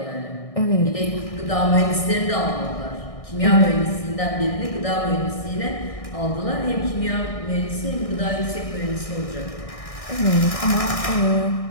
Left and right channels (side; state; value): right; late; 1.6 ms